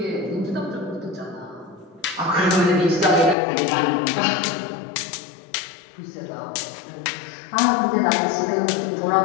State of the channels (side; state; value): right; drops out; at 3.4 s